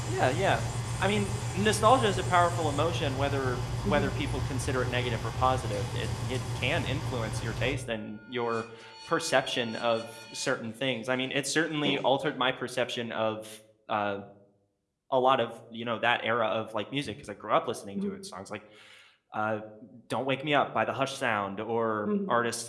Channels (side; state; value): both; identical; correlation 1.00